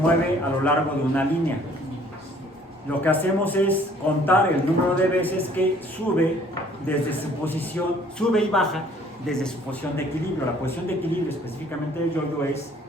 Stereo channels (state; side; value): normal; both; correlation 0.57